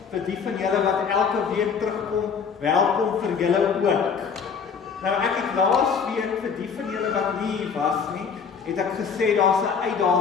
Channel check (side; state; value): right; quieter; 6.2 dB